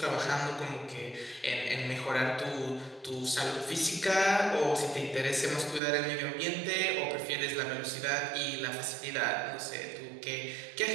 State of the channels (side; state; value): left; drops out; at 5.8 s